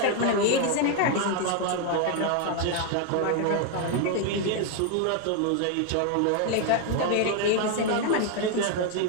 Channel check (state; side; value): different; both; correlation 0.01